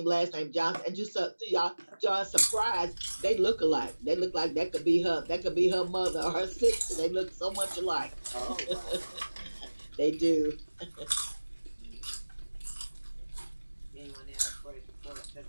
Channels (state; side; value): inverted; both; correlation -1.00